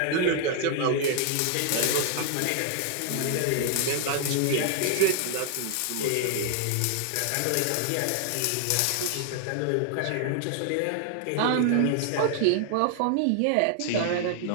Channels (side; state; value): both; different; correlation 0.00